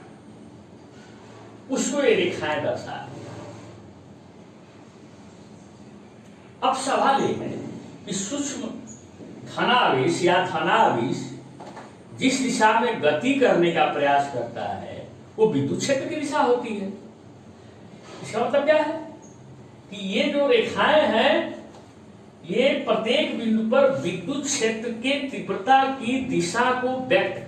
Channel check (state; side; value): identical; both; correlation 1.00